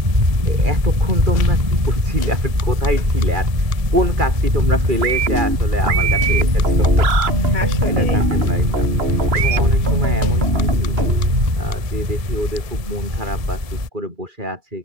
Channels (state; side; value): late; left; 2.3 ms